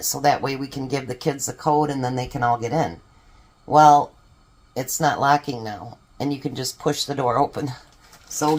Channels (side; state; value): both; identical; correlation 1.00